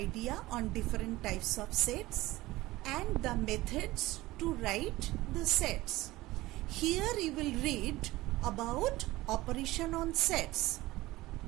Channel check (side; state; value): left; quieter; 18.5 dB